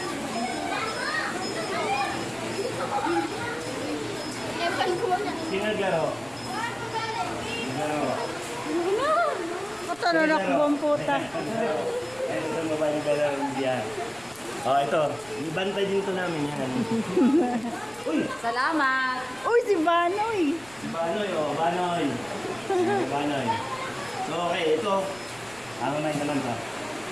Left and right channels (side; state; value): right; noise; rumble, 24 dB below the sound